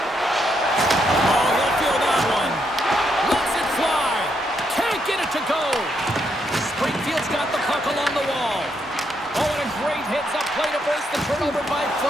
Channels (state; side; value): normal; both; correlation 0.77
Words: he'll feel that one. Lets it fly. Can't get it to go. Springfield's got the puck along the wall. Oh, and a great hits-up play to force the turnover by